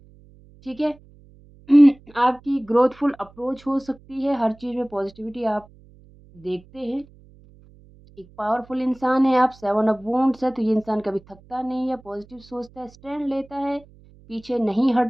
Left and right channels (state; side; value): noise; right; hum, 26 dB below the sound